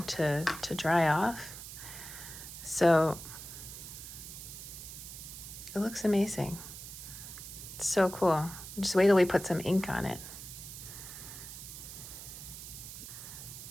to dry off. So it looks amazing. It's so cool. Just wait till we put some ink on it.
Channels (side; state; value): right; noise; hiss, 11 dB below the sound